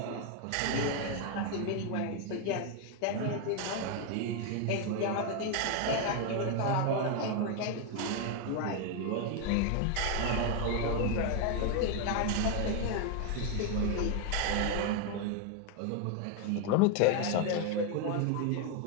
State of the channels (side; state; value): both; different; correlation 0.01